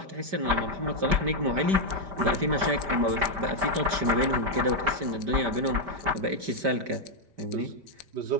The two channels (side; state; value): left; late; 5.1 ms